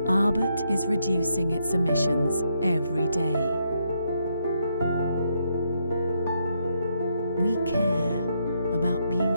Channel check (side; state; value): both; inverted; correlation -0.77